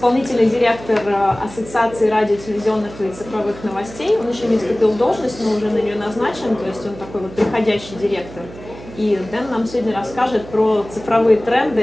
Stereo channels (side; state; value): right; noise; hum, 16 dB below the sound